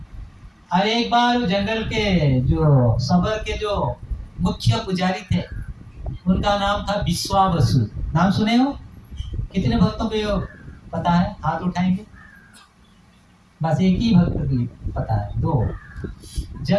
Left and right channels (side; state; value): both; identical; correlation 1.00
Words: और एक बार जंगल के जो सबर के जो मुख्य पुजारी थे, उनका नाम था विश्वावसु। नाम सुने हो? कितने भक्तों को ये पता है? हाथ उठाएंगे। बस एक ही भक्त को पता है। दो।